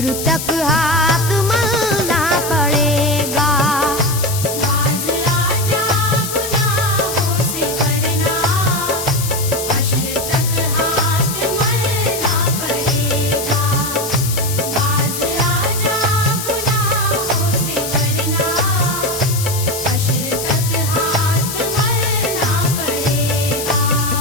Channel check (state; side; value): noise; left; hiss, 6 dB below the sound